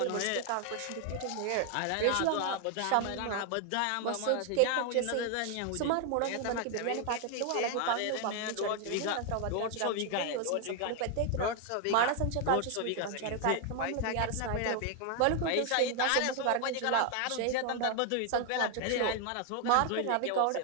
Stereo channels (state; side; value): different; both; correlation 0.01